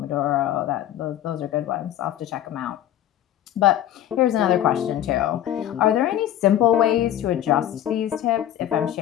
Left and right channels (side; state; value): right; quieter; 11.8 dB